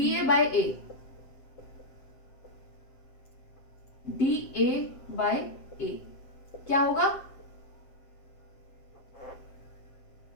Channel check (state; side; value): late; right; 7.7 ms